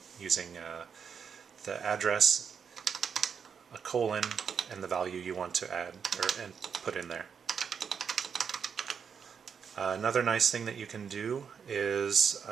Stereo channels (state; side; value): quieter; left; 6.8 dB